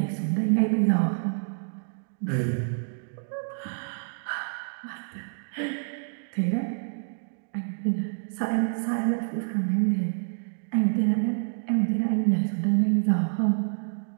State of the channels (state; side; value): silent; left; digital silence